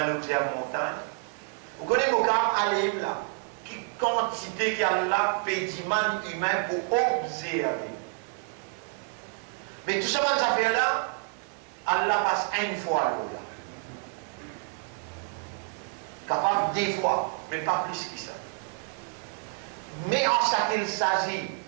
nous dire montagne. Vous connaissez le cas Alim là, qui quantité qu'il y a là, pédiment humain pour observer. Mais tout ça, ça fait là, Allah passe une fois là. Capable des fois, mais pas plus que ça. Mais en ce qu'il s'agit,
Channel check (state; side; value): quieter; left; 38.7 dB